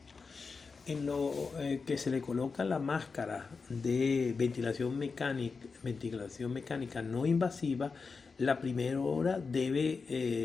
En lo que se le coloca la máscara de ventilación mecánica no invasiva, la primera hora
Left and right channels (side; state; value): right; quieter; 4.8 dB